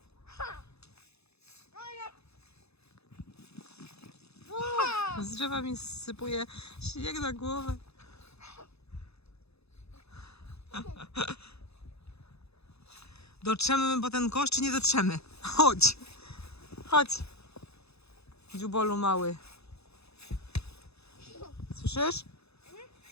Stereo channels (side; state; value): right; late; 0.79 ms